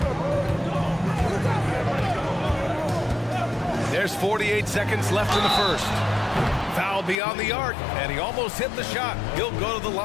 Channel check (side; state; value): right; drops out; at 7.2 s